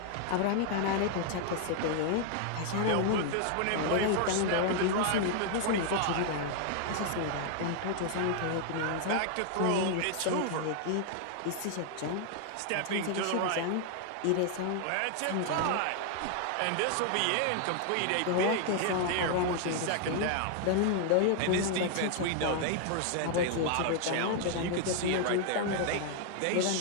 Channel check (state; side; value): different; both; correlation 0.00